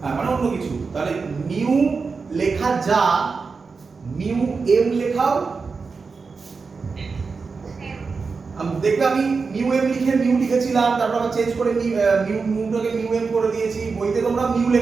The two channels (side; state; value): left; quieter; 4.7 dB